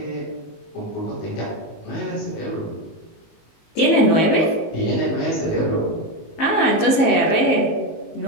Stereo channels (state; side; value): late; right; 19 ms